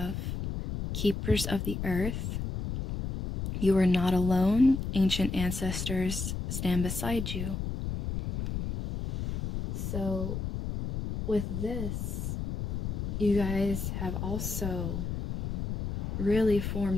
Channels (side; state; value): left; noise; rumble, 3 dB below the sound